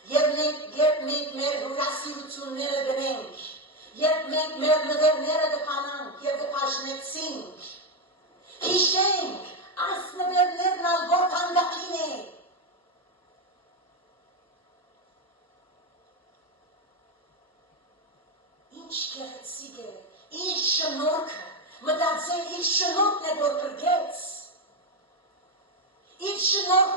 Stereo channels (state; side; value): normal; both; correlation 0.08